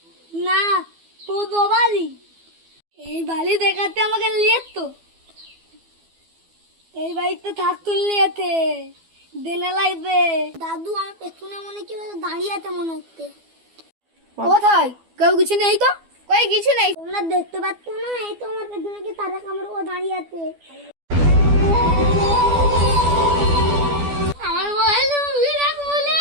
না পোদো বাড়ি? এই বাড়ি দেখাতে আমাকে নিয়ে তো, এই বাড়িতে থাকতো নিয়েতে দেনে লাগবে। দাদু, আমার পেছনে মনে কি দাঁড়িয়ে আছে মনে হচ্ছে। কোথায়? কেউ কিছু নেই তো। কই কিছু নাই। তোমরা দেখতে পাচ্ছ না? এই তো আমার পেছনে কি তারা কামড় ও দাঁড়িয়ে আছে। আমার মোবাইল লুকিয়ে রাখ বলে।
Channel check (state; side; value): late; left; 12 ms